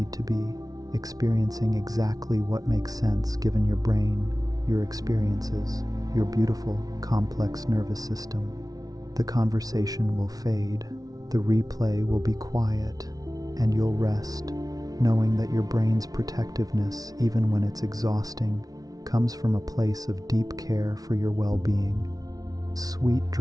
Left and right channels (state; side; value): late; left; 0.18 ms